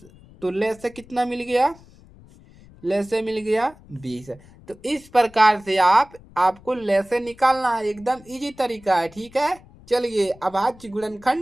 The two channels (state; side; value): noise; left; rumble, 24 dB below the sound